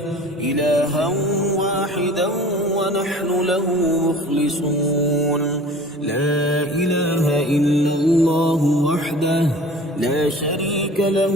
إلها واحدا ونحن له مخلصون لا إله إلا الله وحده لا شريك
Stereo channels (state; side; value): normal; both; correlation 0.43